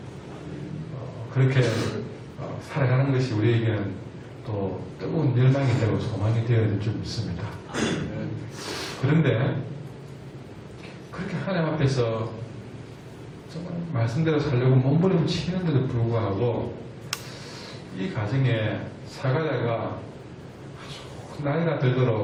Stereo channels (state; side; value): identical; both; correlation 1.00